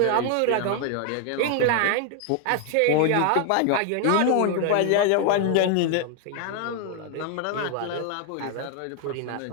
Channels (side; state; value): both; different; correlation 0.00